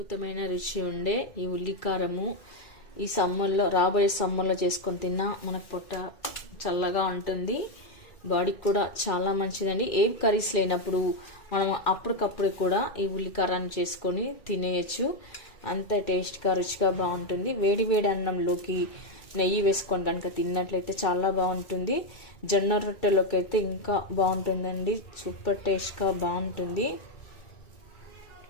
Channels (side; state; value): right; late; 2.3 ms